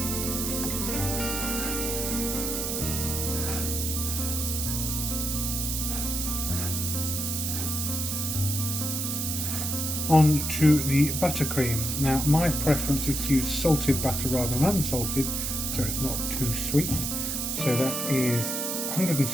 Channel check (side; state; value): right; noise; hiss, 2 dB below the sound